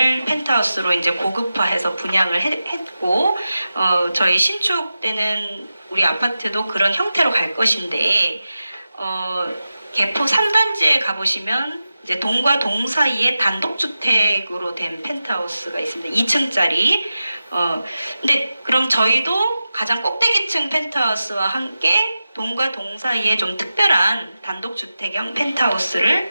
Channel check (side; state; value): both; inverted; correlation -0.93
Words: 펜트하우스로 이제 고급화해서 분양을 했고, 저희 신축 때는 우리 아파트도 그런 형태로 갈 것인데, 개포 3단지에 가보시면 이제 동과 동 사이에 단독주택으로 된 펜트하우스가 있습니다. 2층짜리. 근데 그럼 저희도 가장 꼭대기층 펜트하우스와 함께 동과 동 사이에 좀 특별한 단독주택형